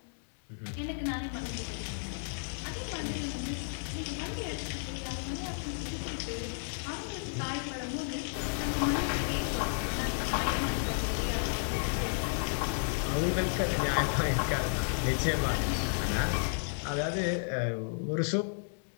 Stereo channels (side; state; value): right; silent; digital silence